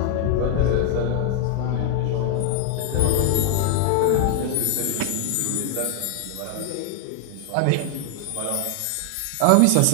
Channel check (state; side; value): different; both; correlation 0.00